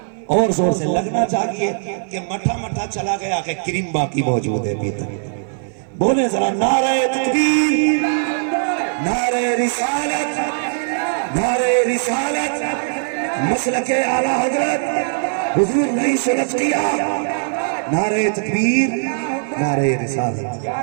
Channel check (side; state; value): left; silent; 57 dB below the other